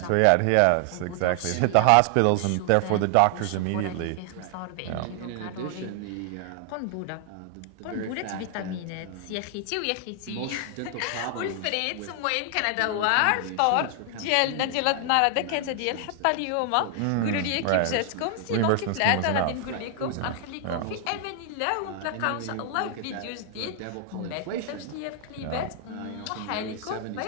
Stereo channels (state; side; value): different; both; correlation 0.00